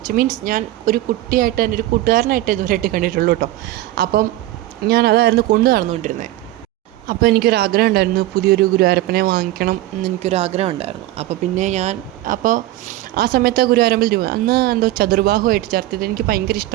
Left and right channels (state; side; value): quieter; left; 15.8 dB